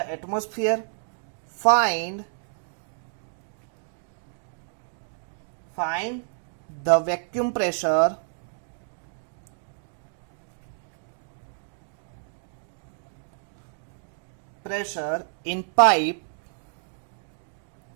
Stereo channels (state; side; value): silent; left; digital silence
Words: Find the vacuum pressure in pipe